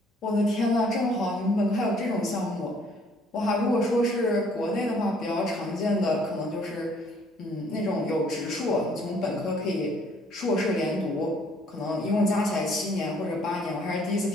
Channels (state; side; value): normal; both; correlation 0.61